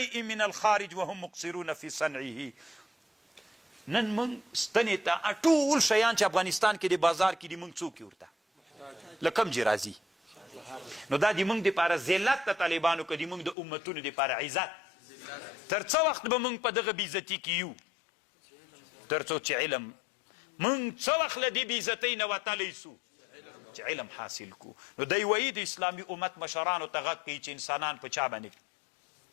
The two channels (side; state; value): right; drops out; at 13.6 s